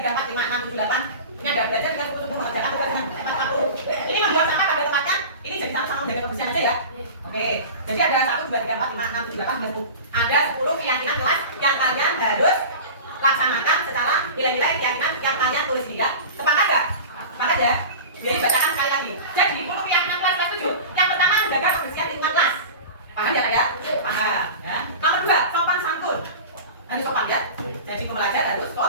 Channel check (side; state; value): both; inverted; correlation -0.33